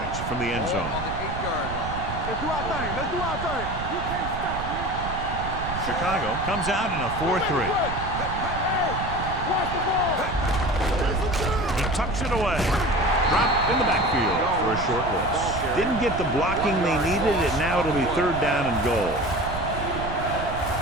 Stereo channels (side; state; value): right; noise; rumble, 7 dB below the sound